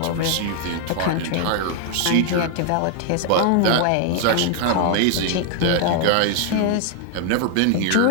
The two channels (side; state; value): both; different; correlation 0.00